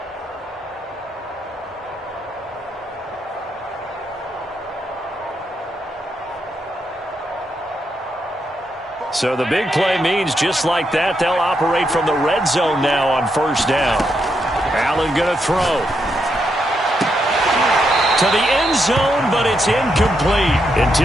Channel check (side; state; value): both; normal; correlation 0.81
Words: So the big play means just like that, they'll operate from the red zone now on first down. Allen going to throw. To the end zone, but it's incomplete.